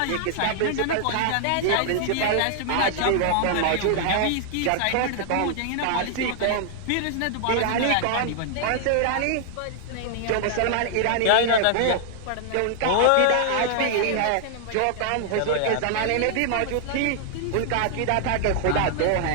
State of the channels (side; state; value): both; different; correlation 0.00